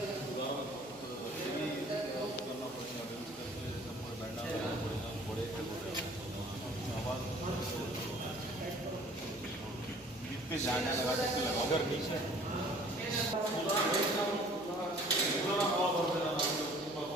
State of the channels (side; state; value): right; noise; hum, 26 dB below the sound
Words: जाने लगा अगर नीचे